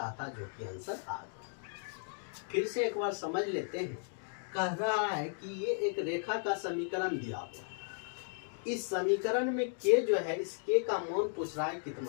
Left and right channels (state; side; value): silent; right; 54 dB below the other